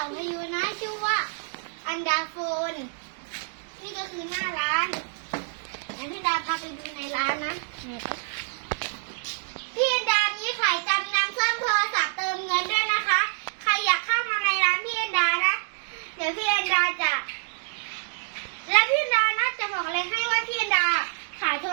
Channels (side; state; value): left; silent; digital silence